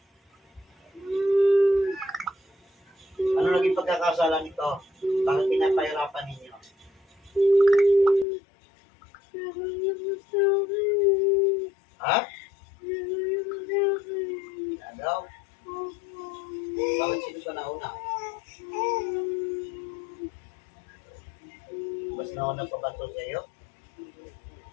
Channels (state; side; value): drops out; right; at 8.2 s